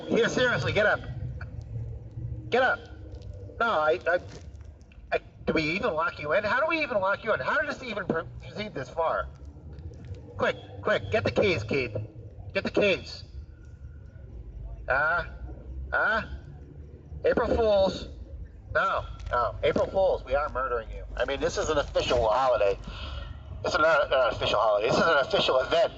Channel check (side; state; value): both; identical; correlation 1.00